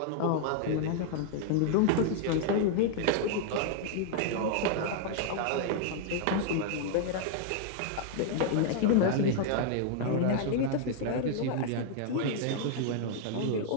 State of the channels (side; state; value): both; different; correlation 0.00